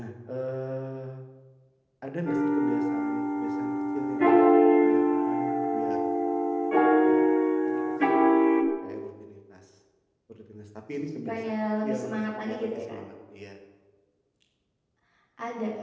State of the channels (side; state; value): both; identical; correlation 1.00